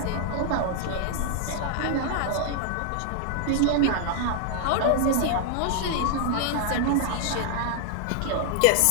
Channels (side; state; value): both; different; correlation 0.00